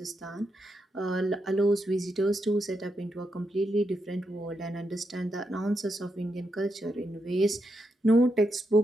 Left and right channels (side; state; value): both; normal; correlation 0.83